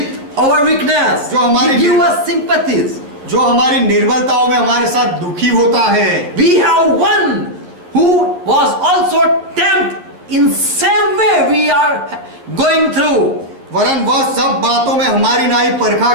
our weakness. जो हमारी He give us sympathies. जो हमारी निर्बलताओं में हमारे साथ दुखी होता है। We have one who was also tempted in same way we are going through. वरन वह सब बातों में हमारी नाई परखा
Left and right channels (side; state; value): left; late; 11 ms